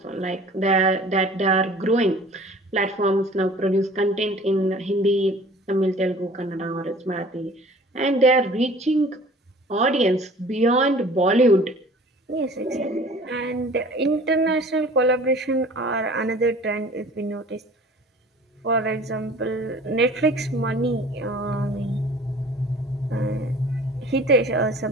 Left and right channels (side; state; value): both; normal; correlation 0.47